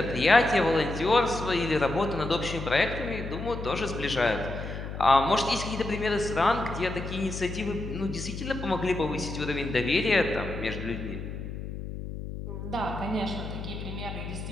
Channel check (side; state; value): left; noise; hum, 7 dB below the sound